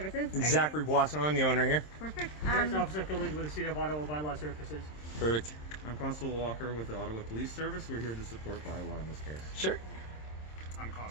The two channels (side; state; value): right; late; 26 ms